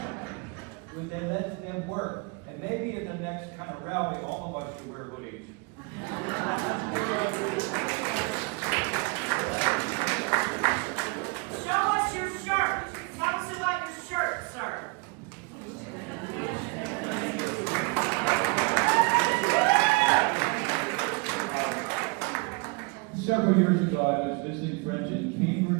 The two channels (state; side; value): quieter; left; 30.7 dB